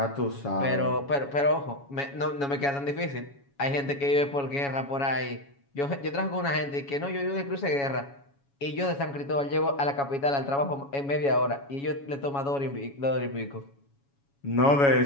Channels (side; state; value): right; late; 7.2 ms